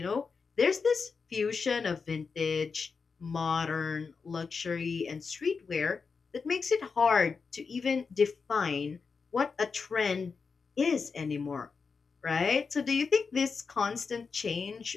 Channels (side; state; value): right; quieter; 5.1 dB